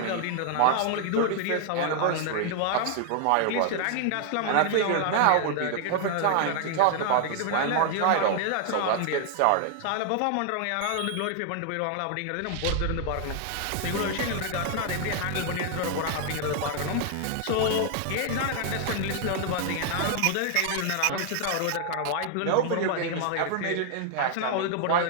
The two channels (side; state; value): both; different; correlation 0.00